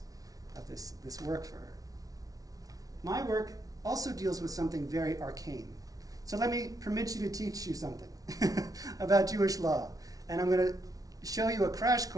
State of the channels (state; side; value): late; left; 0.18 ms